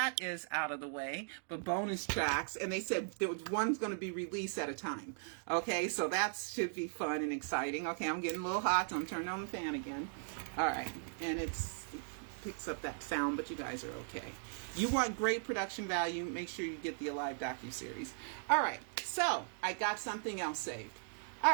is out of the way. But bonus tracks, and they said there was one's going to be released at a time. Okay, so that should be fun and exciting. Okay, I'm getting a little hot, so I'm turning on the fan again. All right, and it picks up that sound, but you guys are okay. You want great production value, make sure you get the Alive Docu-series. All right, so I got something else saved. All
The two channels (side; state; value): left; silent; digital silence